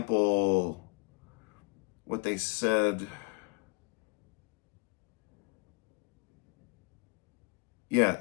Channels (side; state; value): right; quieter; 28.7 dB